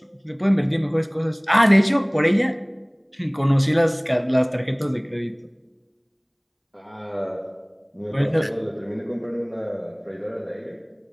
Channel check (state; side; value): identical; both; correlation 1.00